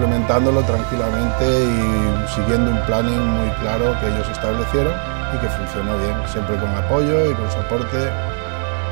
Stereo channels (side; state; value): left; silent; 67 dB below the other